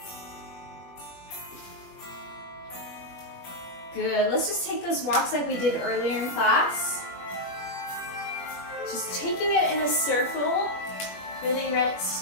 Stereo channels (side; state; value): right; late; 21 ms